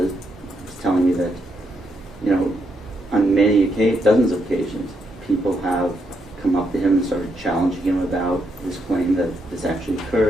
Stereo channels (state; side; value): normal; both; correlation 0.79